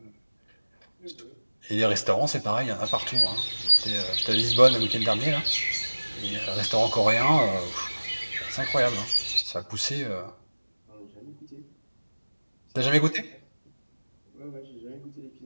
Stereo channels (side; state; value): both; inverted; correlation -1.00